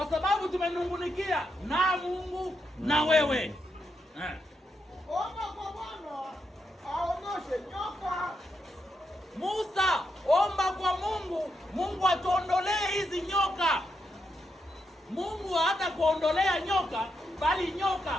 sababu tumenungunikia na Mungu na wewe. Omba kwa Bwana aondoshe nyoka. Musa, omba kwa Mungu, Mungu atuondolee hizi nyoka. Mungu hata kuondolea nyoka, bali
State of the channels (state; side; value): normal; both; correlation 0.83